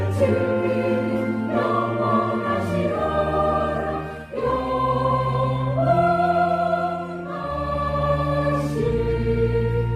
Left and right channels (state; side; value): identical; both; correlation 1.00